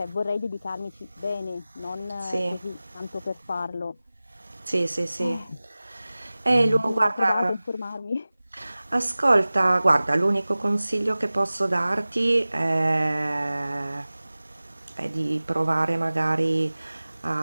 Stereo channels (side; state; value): both; inverted; correlation -0.98